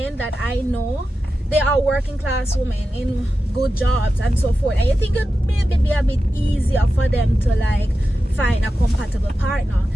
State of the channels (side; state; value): both; normal; correlation 0.92